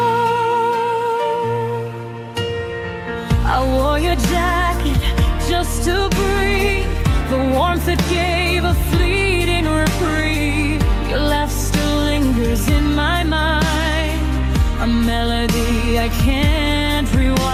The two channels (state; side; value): identical; both; correlation 1.00